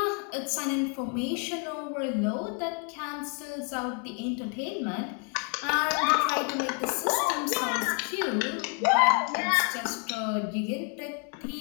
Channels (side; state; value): right; quieter; 37.5 dB